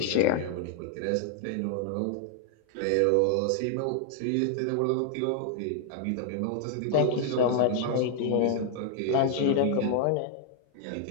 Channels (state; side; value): different; both; correlation 0.00